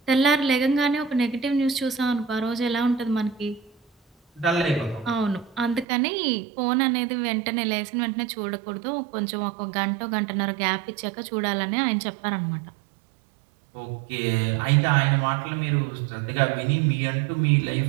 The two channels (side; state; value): left; drops out; at 5.9 s